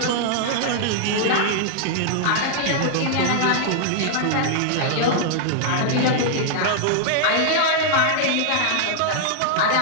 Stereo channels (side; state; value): both; different; correlation -0.01